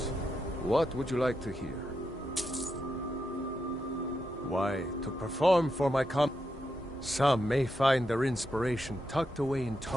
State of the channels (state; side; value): normal; both; correlation 0.85